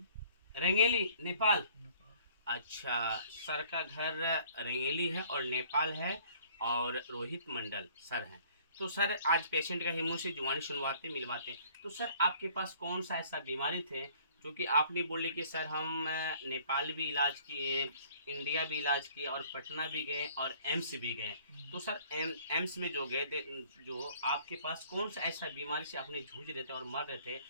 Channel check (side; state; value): both; inverted; correlation -0.56